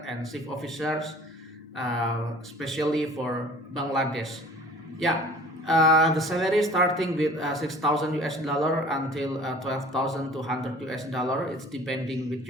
and ship officers, especially for Bangladesh. Yeah, the salary starting with 6,000 US dollar until 12,200 US dollar. It's depending with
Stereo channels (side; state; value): both; normal; correlation 0.47